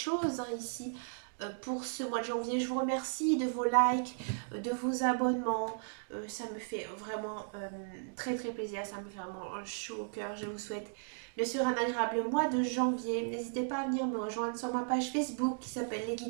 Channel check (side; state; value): left; silent; digital silence